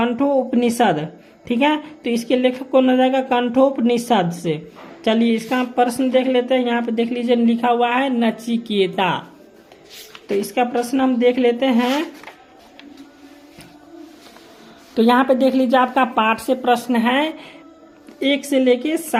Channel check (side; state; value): both; identical; correlation 1.00